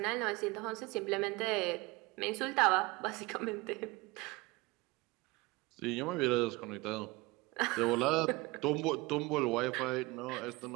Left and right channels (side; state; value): left; quieter; 22.9 dB